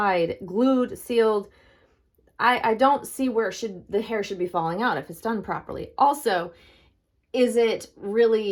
glued, sealed, I don't see where the hair should be falling out if it's done properly. Also, is it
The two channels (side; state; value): both; identical; correlation 1.00